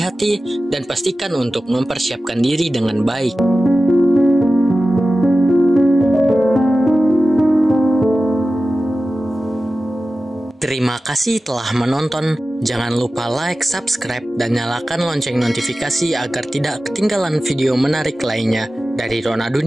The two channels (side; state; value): both; normal; correlation 0.95